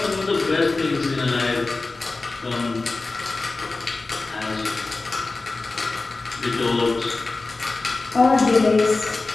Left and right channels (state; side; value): quieter; right; 3.5 dB